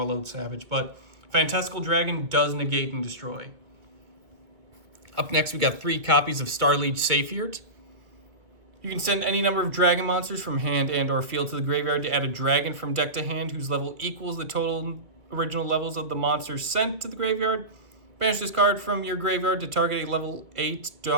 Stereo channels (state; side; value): late; left; 1.9 ms